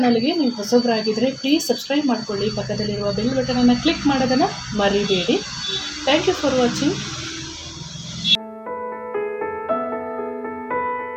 ನೀವು ಹೊಸಬರಾಗಿದ್ದರೆ ಪ್ಲೀಸ್ ಸಬ್ಸ್ಕ್ರೈಬ್ ಮಾಡಿಕೊಳ್ಳಿ. ಪಕ್ಕದಲ್ಲಿರುವ ಬೆಲ್ ಬಟನನ್ನು ಕ್ಲಿಕ್ ಮಾಡೋದನ್ನು ಮರಿಬೇಡಿ. Thank you for watching.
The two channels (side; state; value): both; identical; correlation 1.00